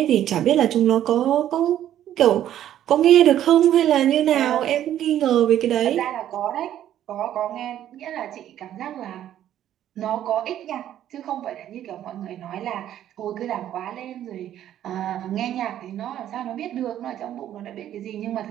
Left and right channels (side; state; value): left; quieter; 11.5 dB